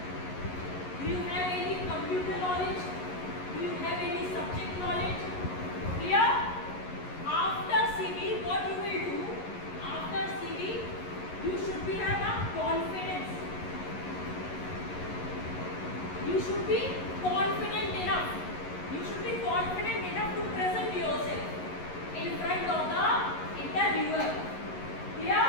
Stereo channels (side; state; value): right; late; 11 ms